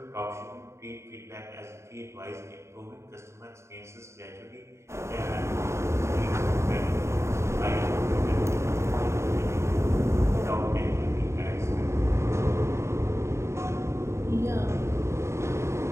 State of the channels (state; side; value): late; left; 0.13 ms